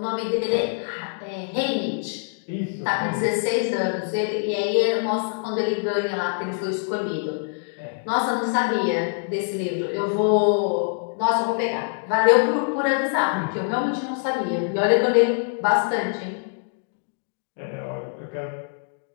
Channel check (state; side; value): silent; right; digital silence